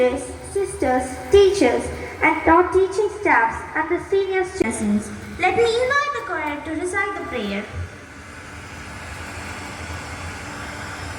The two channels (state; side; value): identical; both; correlation 1.00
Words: sisters, teachers, and non-teaching staffs and the senior citizens. Let me invite the choir to recite the prayer. prayer.